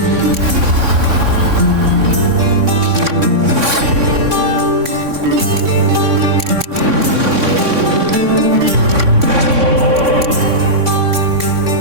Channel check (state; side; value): late; left; 3.6 ms